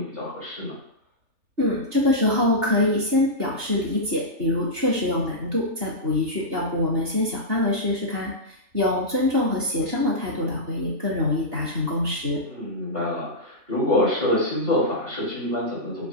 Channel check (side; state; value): left; late; 3.4 ms